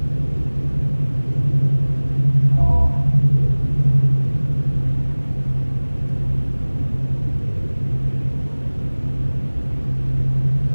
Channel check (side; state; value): both; inverted; correlation -1.00